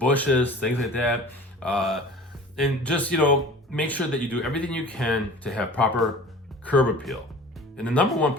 things like that. And just, make sure that you do everything you can to have proper curb appeal. And the number one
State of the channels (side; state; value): both; normal; correlation 0.42